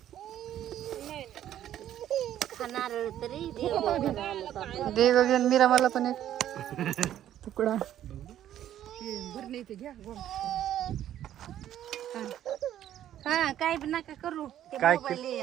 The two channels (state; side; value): quieter; left; 11.6 dB